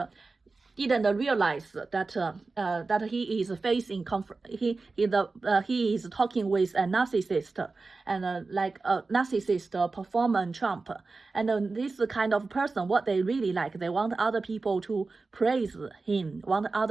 didn't realize that he is facing he is talking with a narcissist, and like a narcissist performer Trump. And this kind of person, what they really like, they want other people to praise him, want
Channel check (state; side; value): quieter; left; 3.9 dB